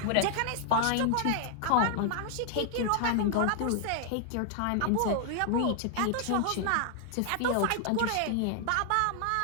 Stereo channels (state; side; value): different; both; correlation 0.00